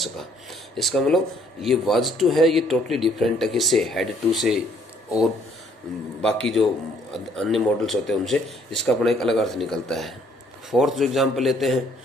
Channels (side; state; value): both; normal; correlation 0.64